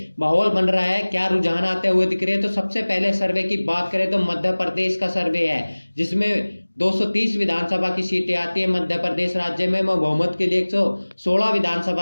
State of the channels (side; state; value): both; inverted; correlation -1.00